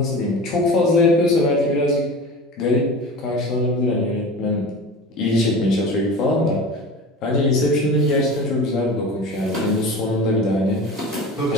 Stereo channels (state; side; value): normal; both; correlation 0.34